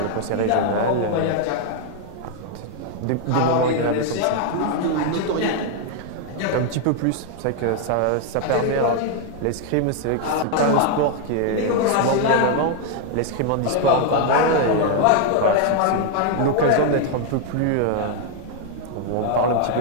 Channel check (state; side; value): different; both; correlation 0.00